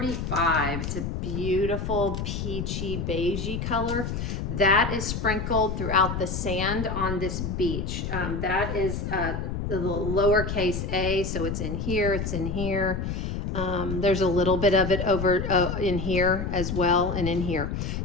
It's a beautiful peachy beigey color that is sprinkled throughout the sand on this beach. That is the lowercase a, so it's in here, it's in here. There's a little bit of it over in here as well, and in here.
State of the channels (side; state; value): left; noise; rumble, 3 dB below the sound